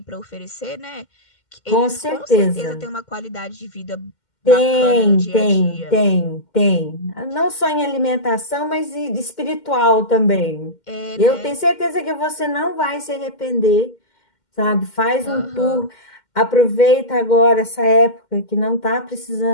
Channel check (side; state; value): right; late; 2.1 ms